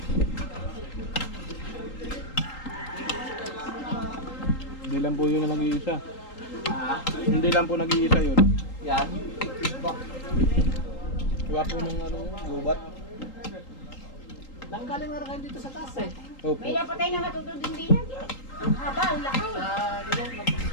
Hindi lang po yun na nag-iisa. Hindi lang po nag-iisa yun. Yan. Iwa po nung ano yun, gubat. Nanggaling na rin kayo dito sa taas eh. Opo. May napatay na natutod din yan. Ang haba, ang laki.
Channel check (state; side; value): late; right; 3.8 ms